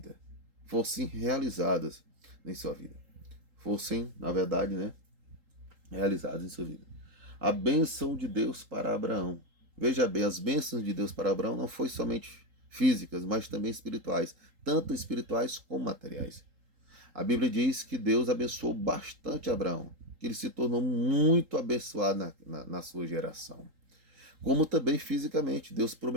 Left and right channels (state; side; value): late; left; 3.8 ms